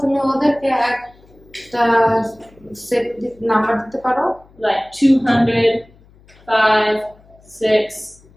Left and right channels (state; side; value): noise; left; hum, 28 dB below the sound